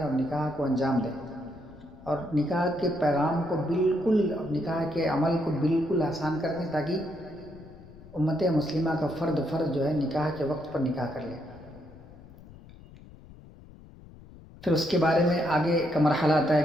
اور نکاح کو انجام دیں، اور نکاح کے پیغام کو بالکل، نکاح کے عمل کو بالکل آسان کر دیں تاکہ امت مسلمہ کا فرد جو ہے نکاح کے وقت پر نکاح کر لے۔ پھر اس کے بارے میں آگے کا مرحلہ آتا ہے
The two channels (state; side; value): noise; left; rumble, 20 dB below the sound